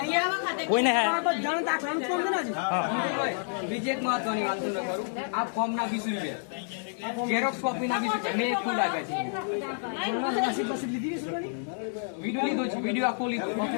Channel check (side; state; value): right; silent; 57 dB below the other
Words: કોઈને હે બધાને દાખલાનું ફોર્મ છે ને બીજી એક મહત્વની વાત તમને કરું. આ ફોર્મ ના 20 રૂપિયા, ઝેરોક્સ કોપી ના 20 રૂપિયા. મેં એક ખુદ આપ્યા છે. બસ લીધી છે વિડીયો લીધો છે, વિડીયો આખો લીધો,